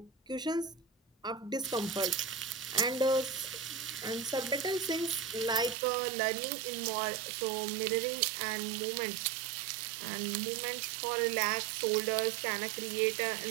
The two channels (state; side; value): drops out; left; at 5.8 s